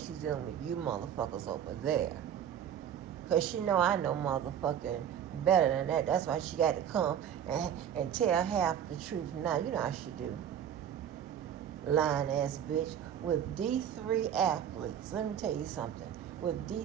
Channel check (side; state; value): left; quieter; 9.4 dB